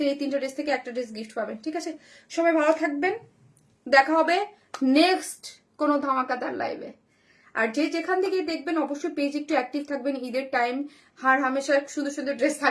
এই 3টা ড্রেস থেকে একটা ড্রেস গিফট পাবেন, ঠিক আছে? সবাই ভালো থাকবেন, দেখা হবে নেক্সট কোনো ধামাকাদার লাইভে। আর যে যেখান থেকে দেখবেন অবশ্যই পেজ একটু অ্যাক্টিভ থাকবেন, ঈদের টাইম হার হামেশা সুন্দর সুন্দর ড্রেস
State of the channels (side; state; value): both; identical; correlation 1.00